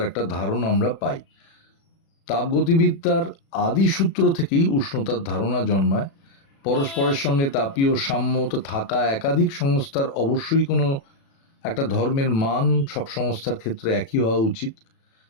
একটা ধারণা আমরা পাই। তাপগতিবিদ্যার আদি সূত্র থেকেই উষ্ণতার ধারণা জন্মায়। পরস্পরের সঙ্গে তাপীয় সাম্য থাকা একাধিক সংস্থার অবশ্যই কোনো একটা ধর্মের মান সব সংস্থার ক্ষেত্রে একই হওয়া উচিত।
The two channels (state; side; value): late; right; 36 ms